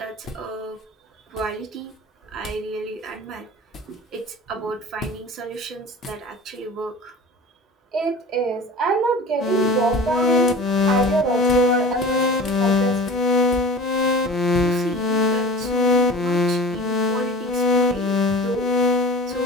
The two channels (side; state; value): both; normal; correlation 0.39